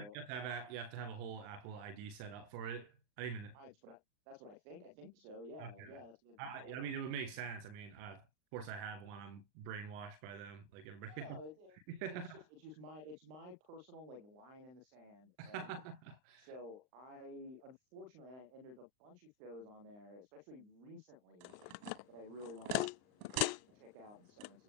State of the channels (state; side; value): late; left; 39 ms